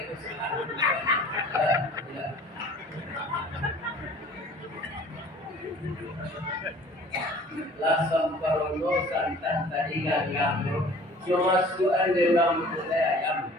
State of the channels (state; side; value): normal; both; correlation 0.49